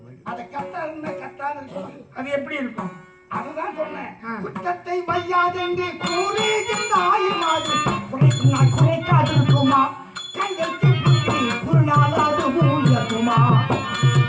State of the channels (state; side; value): identical; both; correlation 1.00